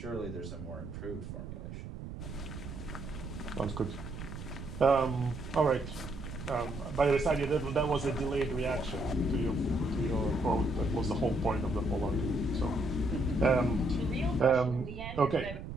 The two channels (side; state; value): right; noise; rumble, 9 dB below the sound